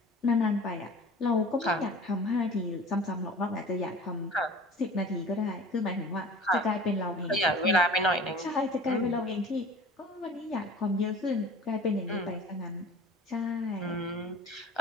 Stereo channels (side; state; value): both; normal; correlation 0.43